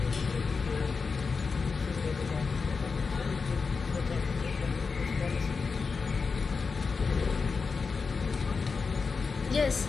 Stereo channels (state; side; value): quieter; right; 4.9 dB